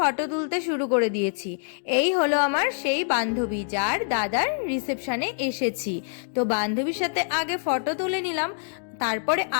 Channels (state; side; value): silent; right; digital silence